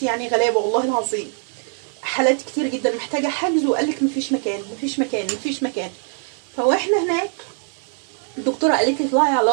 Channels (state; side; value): silent; left; 55 dB below the other